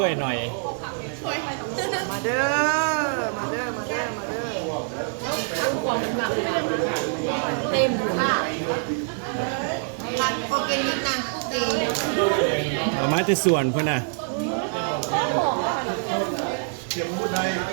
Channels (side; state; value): left; silent; 62 dB below the other